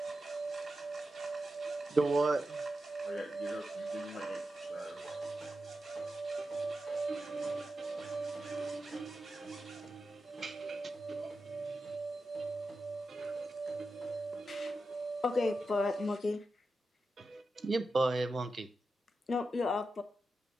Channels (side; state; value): both; normal; correlation 0.90